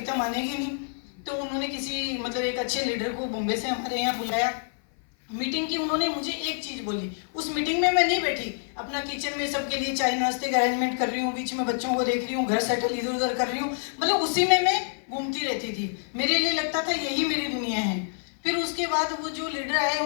मानेगी नहीं। तो उन्होंने किसी मतलब एक अच्छे लीडर को बॉम्बे से हमारे यहाँ बुलाया, मीटिंग की। उन्होंने मुझे एक चीज़ बोली, उस मीटिंग में मैं नहीं बैठी, अपना किचन में सबके लिए चाय नाश्ते का अरेंजमेंट कर रही हूँ, बीच में बच्चों को देख रही हूँ, घर सेटल इधर उधर कर रही हूँ, मतलब उसी में मैं घूमती रहती थी। मेरे लिए लगता था यही मेरी दुनिया है। फिर उसके बाद वो जो लीडर आए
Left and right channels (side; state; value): right; silent; 56 dB below the other